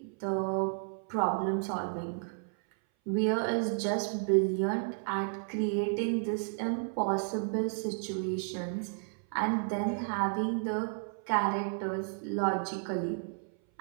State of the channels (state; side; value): silent; left; 56 dB below the other